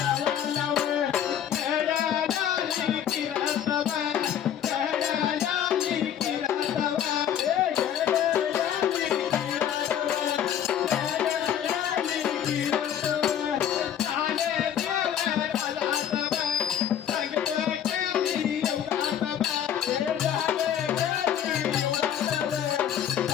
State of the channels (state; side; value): quieter; right; 9.6 dB